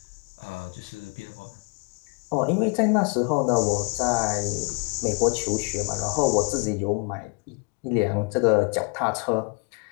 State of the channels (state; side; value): quieter; right; 36.0 dB